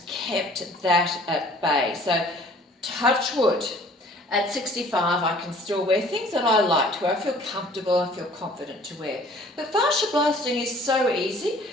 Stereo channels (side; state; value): both; normal; correlation 0.53